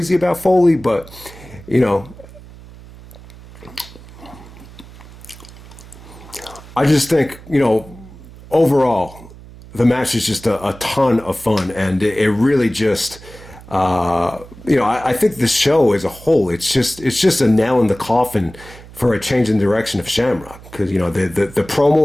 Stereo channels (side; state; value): right; noise; hum, 19 dB below the sound